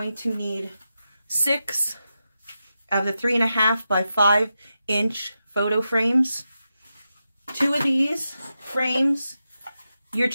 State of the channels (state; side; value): inverted; both; correlation -0.89